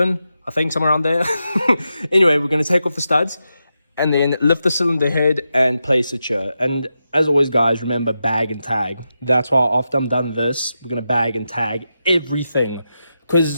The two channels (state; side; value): inverted; both; correlation -0.88